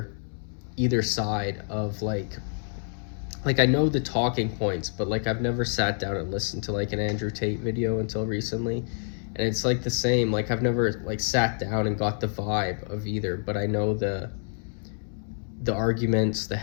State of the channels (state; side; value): silent; right; 60 dB below the other